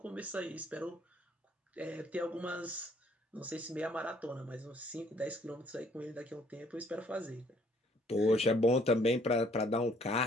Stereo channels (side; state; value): both; normal; correlation 0.62